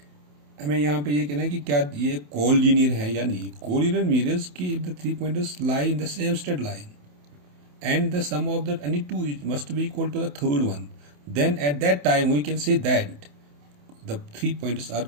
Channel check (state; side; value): late; left; 27 ms